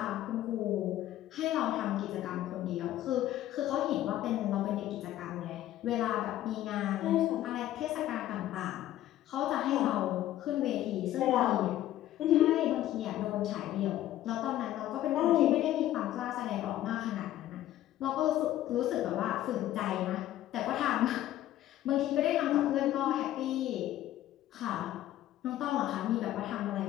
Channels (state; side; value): quieter; right; 13.5 dB